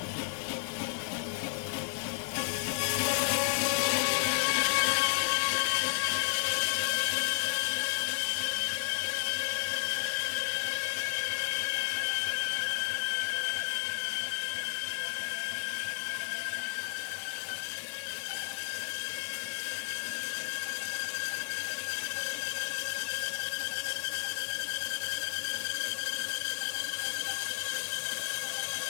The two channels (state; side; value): silent; right; digital silence